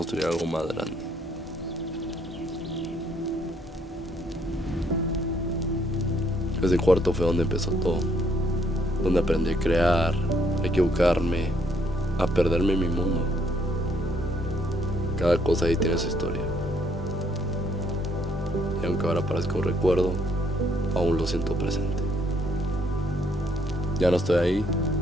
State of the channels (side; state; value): both; normal; correlation 0.68